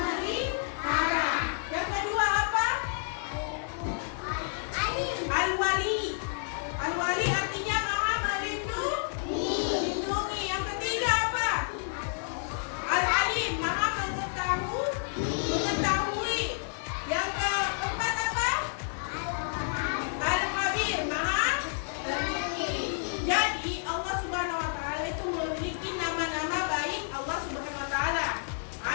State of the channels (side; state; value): right; silent; 58 dB below the other